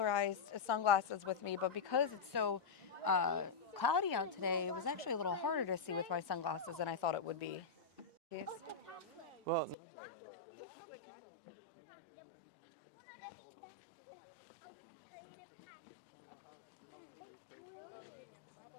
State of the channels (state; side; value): drops out; right; at 9.8 s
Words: sunglasses with me, but because it's so cloudy out today, it was actually a little harder to see with my sunglasses than I thought it would be. Yes. Well, nonetheless, this is a beautiful view, and if you enjoy like being immersed in nature, this is a great place to do it.